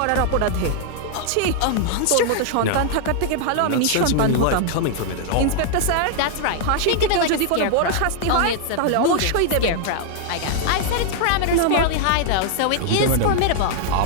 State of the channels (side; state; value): both; different; correlation 0.00